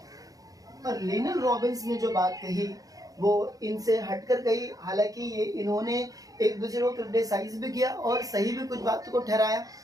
और लिनल रॉबिन्स ने जो बात कही वो इनसे हटकर कही, हालांकि ये इन्होंने एक दूसरे को क्रिटिसाइज भी किया और सही भी कुछ बातों को ठहराया।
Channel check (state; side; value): late; left; 0.17 ms